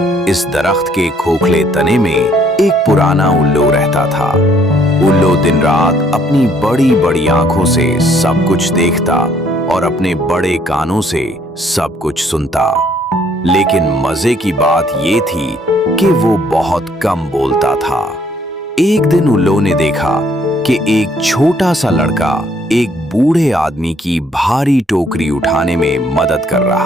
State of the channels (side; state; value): both; normal; correlation 0.65